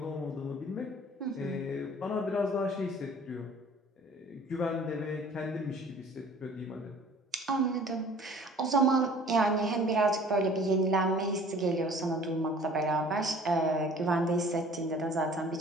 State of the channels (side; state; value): both; normal; correlation 0.50